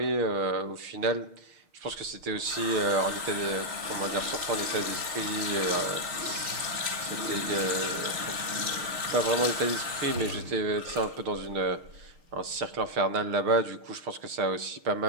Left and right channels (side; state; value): left; late; 6.5 ms